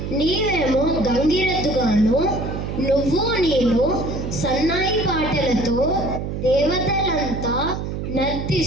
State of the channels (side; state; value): right; noise; hum, 5 dB below the sound